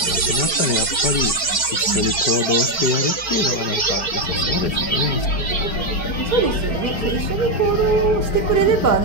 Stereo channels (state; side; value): late; right; 4.4 ms